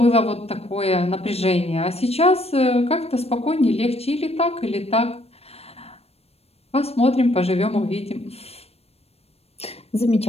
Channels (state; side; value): late; right; 0.29 ms